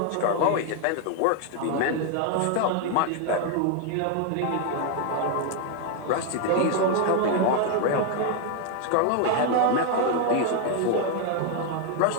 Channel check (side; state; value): both; different; correlation 0.00